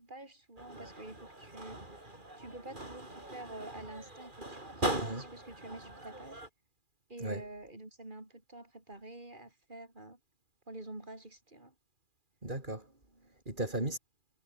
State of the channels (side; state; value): left; late; 2.4 ms